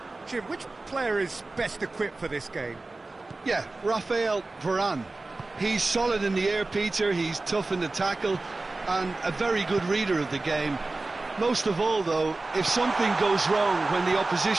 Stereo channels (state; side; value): quieter; left; 3.2 dB